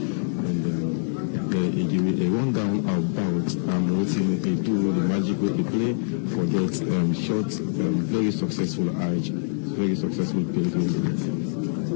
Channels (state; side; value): silent; right; digital silence